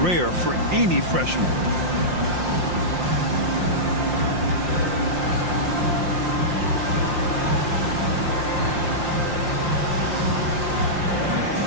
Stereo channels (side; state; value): left; late; 5.7 ms